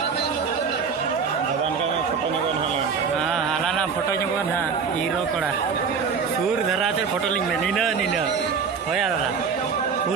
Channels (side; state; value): left; quieter; 5.9 dB